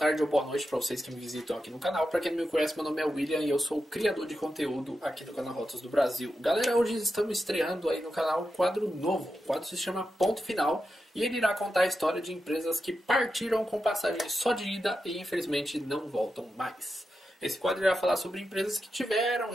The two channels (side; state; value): both; normal; correlation 0.89